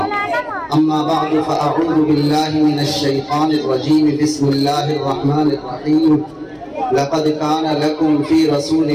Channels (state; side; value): identical; both; correlation 1.00